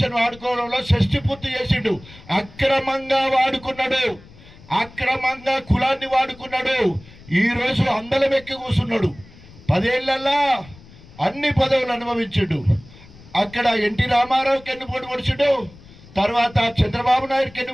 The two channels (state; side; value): noise; left; rumble, 22 dB below the sound